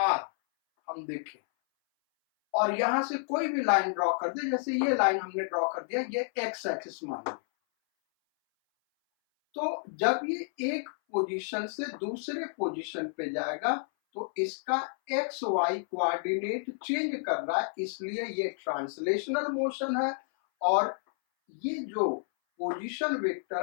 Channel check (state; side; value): silent; right; 58 dB below the other